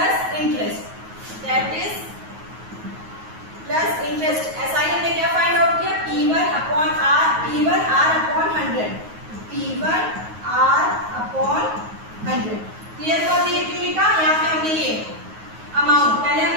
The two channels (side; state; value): left; late; 9.4 ms